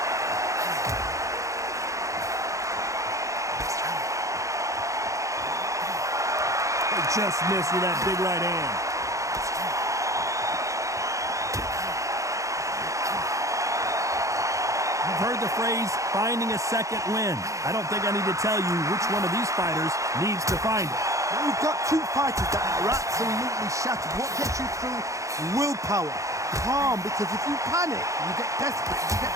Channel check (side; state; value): left; late; 0.15 ms